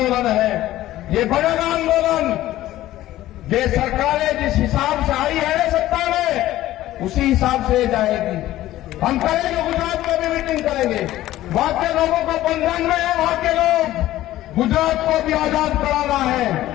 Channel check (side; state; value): right; quieter; 14.8 dB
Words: है। ये बढ़ेगा आंदोलन। ये सरकारें जिस हिसाब से आई है सत्ता में, उसी हिसाब से जाएगी। हम करेंगे, गुजरात में भी मीटिंग करेंगे। वहां के लोगों को बंधन में है, वहां के लोग, गुजरात को भी आजाद कराना है।